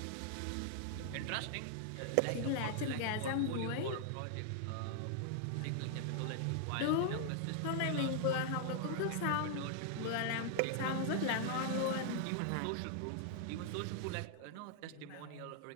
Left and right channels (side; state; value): both; different; correlation 0.00